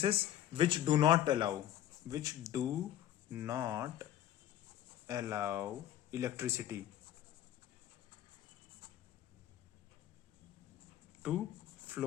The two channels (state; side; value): quieter; right; 12.0 dB